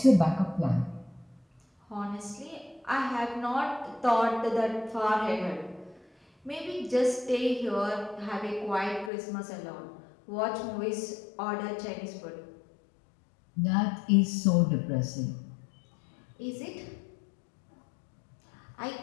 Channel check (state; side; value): drops out; right; at 9.1 s